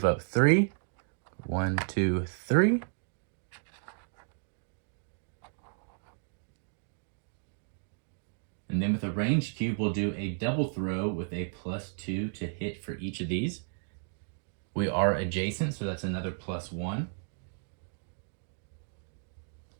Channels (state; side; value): silent; left; digital silence